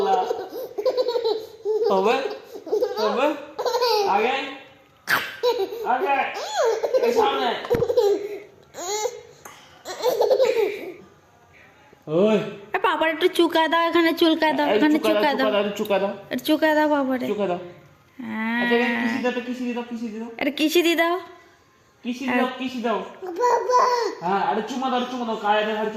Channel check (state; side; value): identical; both; correlation 1.00